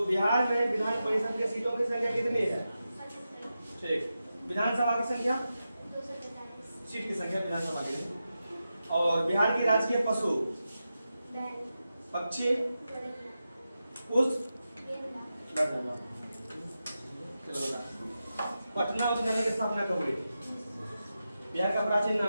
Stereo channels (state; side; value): inverted; both; correlation -0.91